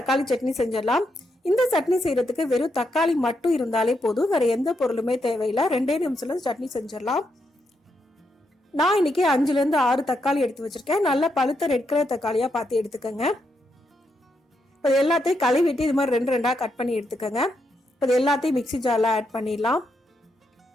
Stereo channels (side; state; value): both; normal; correlation 0.81